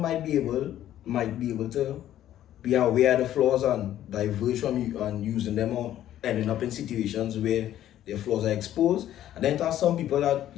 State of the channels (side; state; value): right; quieter; 12.2 dB